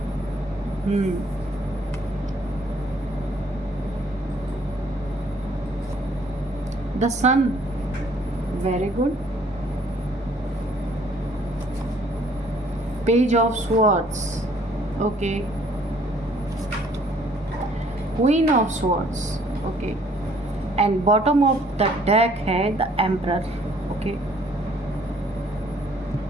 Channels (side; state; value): both; normal; correlation 0.61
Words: the Sun, very good, Page of Swords, okay, Queen of Swords, okay, and bottom of the deck है the emperor, okay.